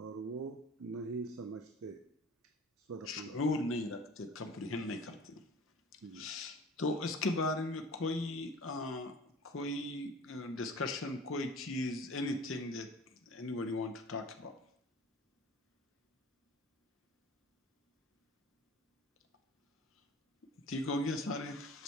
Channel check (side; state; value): both; normal; correlation 0.43